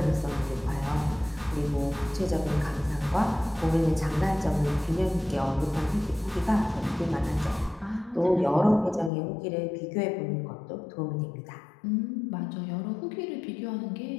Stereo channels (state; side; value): drops out; right; at 9.1 s